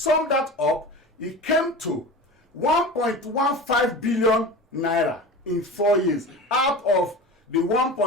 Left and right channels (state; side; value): normal; both; correlation 0.32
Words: that up, it came to 1.15 billion naira in 4 years out of the